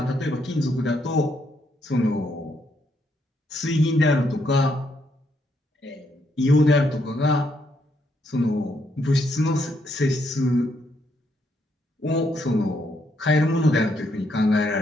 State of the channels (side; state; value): both; normal; correlation 0.75